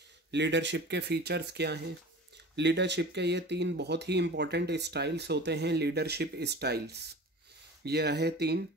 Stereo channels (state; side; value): normal; both; correlation 0.38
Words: लीडरशिप के फीचर्स क्या हैं। लीडरशिप के ये 3 बहुत ही इंपॉर्टेंट स्टाइल्स होते हैं, लीडरशिप स्टाइल्स। ये रहे 3,